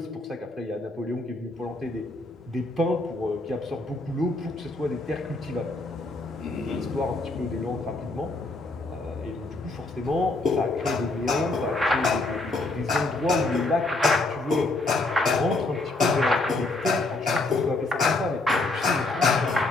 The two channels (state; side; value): quieter; right; 3.0 dB